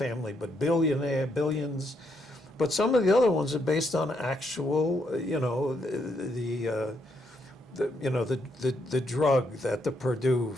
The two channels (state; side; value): normal; both; correlation 0.76